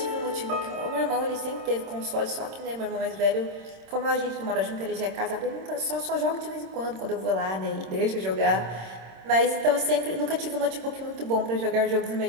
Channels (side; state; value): left; late; 26 ms